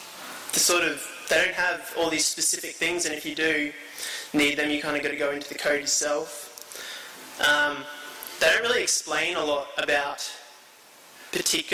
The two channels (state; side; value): identical; both; correlation 1.00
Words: they don't have all these specific things, and if you do need them, you kind of got to go into the code yourself. They don't really explain a lot about